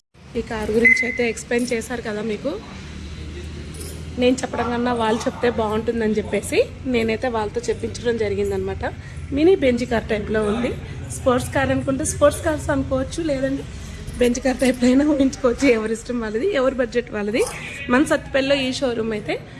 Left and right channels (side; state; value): both; identical; correlation 1.00